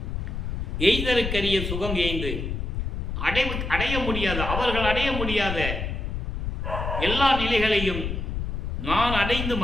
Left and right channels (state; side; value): noise; left; rumble, 3 dB below the sound